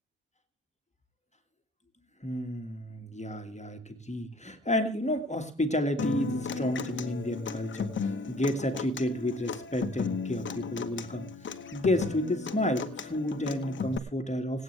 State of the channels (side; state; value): both; normal; correlation 0.55